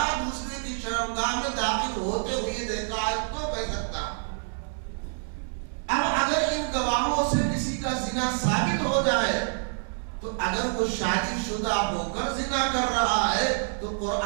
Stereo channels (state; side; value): silent; left; digital silence